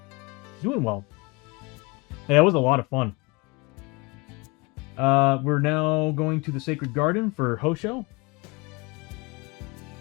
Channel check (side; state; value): right; quieter; 25.7 dB